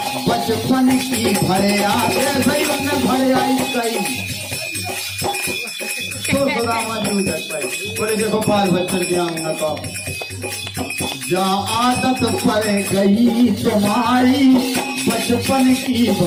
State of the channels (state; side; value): identical; both; correlation 1.00